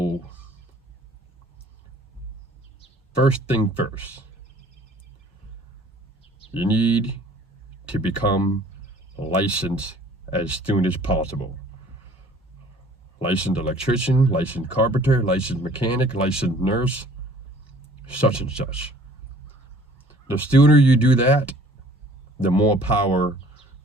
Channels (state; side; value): normal; both; correlation 0.53